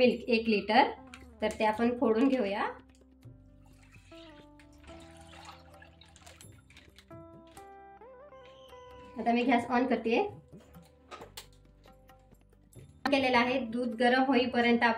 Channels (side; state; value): both; identical; correlation 1.00